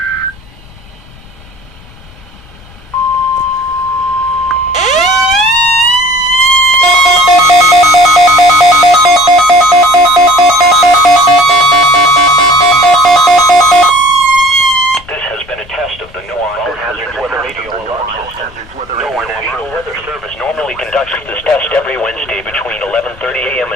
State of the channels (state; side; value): noise; left; rumble, 23 dB below the sound